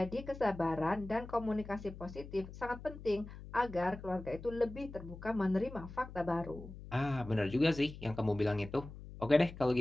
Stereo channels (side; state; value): left; noise; hum, 14 dB below the sound